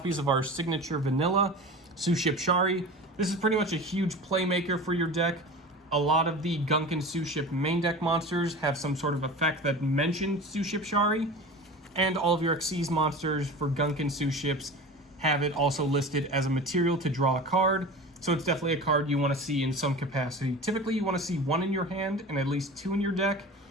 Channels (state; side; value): normal; both; correlation 0.34